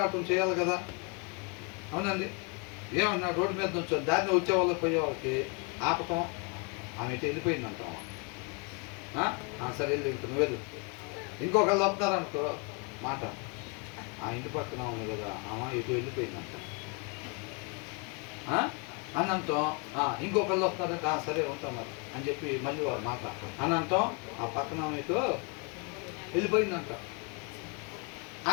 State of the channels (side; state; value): right; quieter; 32.3 dB